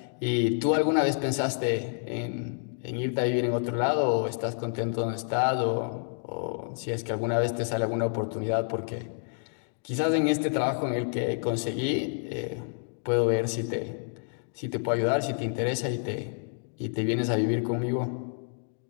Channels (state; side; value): silent; right; digital silence